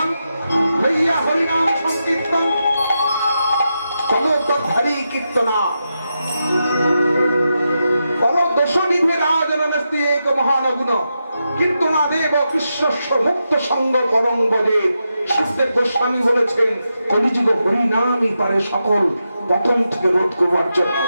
লইয়া হরিনাম সংকীর্তন কলতধারী কীর্তনা পরদোষনিধে রাজনস্তি এক মহানগুণ কীর্তনা দেব কৃষ্ণস্ব মুক্ত সঙ্গ পরম বলে। সুখদেব গোস্বামী বলেছেন, কলিযুগ হরিনামই পারে সকল পতন থেকে রোধ করবার জন্য।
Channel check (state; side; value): inverted; both; correlation -0.87